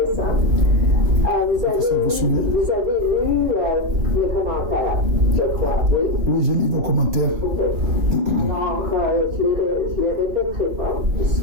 Vous avez lu mes commentaires, je crois, oui? Oui, j'ai lu vos commentaires. OK. Alors, je les répéterai pas. Ce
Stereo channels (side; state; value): left; late; 4.3 ms